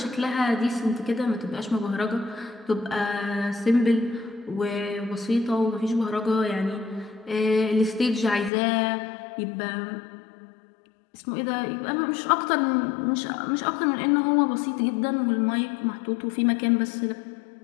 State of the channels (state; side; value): drops out; right; at 8.5 s